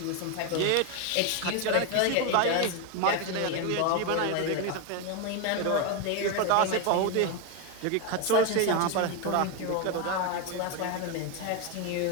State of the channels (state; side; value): different; both; correlation 0.02